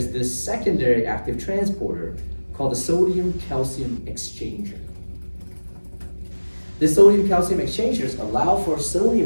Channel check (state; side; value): inverted; both; correlation -1.00